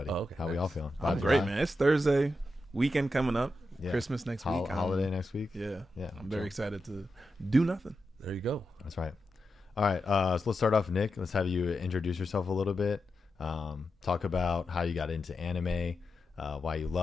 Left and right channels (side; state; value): both; normal; correlation 0.88